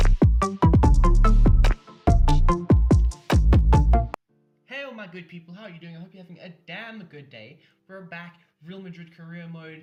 good people, how are you doing? I hope you're having a damn good day. We're back, Real Madrid career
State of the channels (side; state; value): both; identical; correlation 1.00